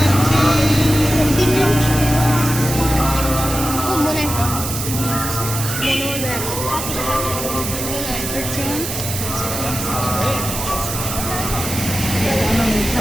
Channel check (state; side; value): noise; right; hiss, 5 dB below the sound